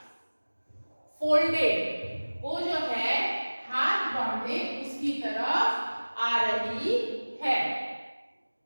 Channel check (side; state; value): both; inverted; correlation -1.00